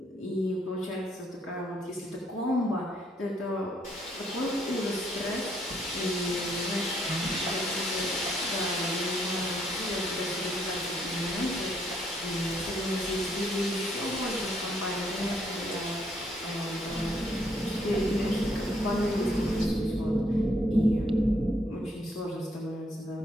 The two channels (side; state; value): both; normal; correlation 0.70